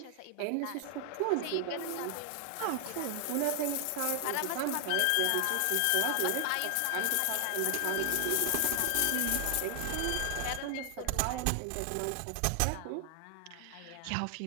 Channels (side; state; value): both; different; correlation 0.00